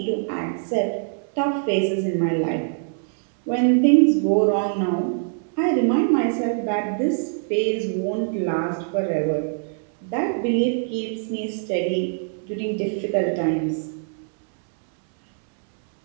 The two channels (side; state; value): left; silent; 63 dB below the other